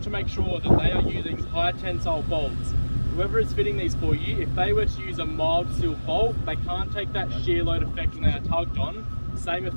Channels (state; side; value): inverted; both; correlation -1.00